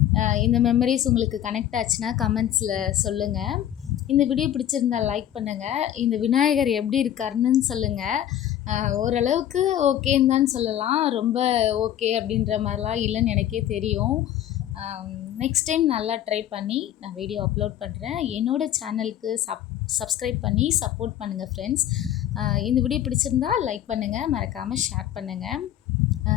இந்த மெமரிஸ் உங்களுக்கு கனெக்ட் ஆச்சுன்னா கமெண்ட்ஸில் சொல்லுங்கள். இந்த வீடியோ பிடிச்சிருந்தால் லைக் பண்ணுங்கள். இந்த விநாயகர் எப்படி இருக்காருன்னு சொல்லுங்கள். ஓரளவுக்கு ஓகேன்னு தான் சொல்லலாம். ரொம்ப ஓகே அப்படின்ற மாதிரிலாம் இல்லைன்னு எனக்கே தெரியும். நெக்ஸ்ட் டைம் நல்லா ட்ரை பண்ணி நான் வீடியோ அப்லோட் பண்ணுறேன். என்னோடய சேனலுக்கு சப்ஸ்கிரைப் பண்ணி சப்போர்ட் பண்ணுங்கள் ஃப்ரெண்ட்ஸ். இந்த வீடியோ பிடிச்சிருந்தா லைக் பண்ணுங்கள், மறக்காமல் ஷேர் பண்ணுங்கள்.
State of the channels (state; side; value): quieter; right; 11.4 dB